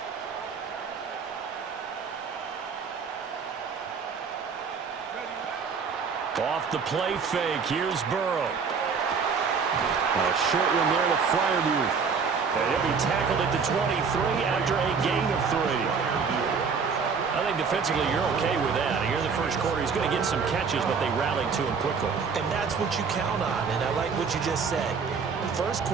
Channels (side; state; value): left; quieter; 5.6 dB